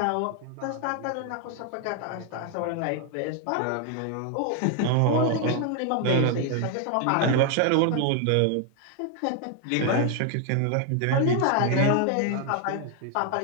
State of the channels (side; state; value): both; different; correlation 0.01